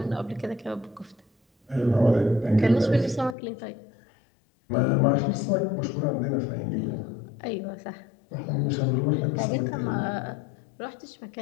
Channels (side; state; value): right; drops out; at 3.4 s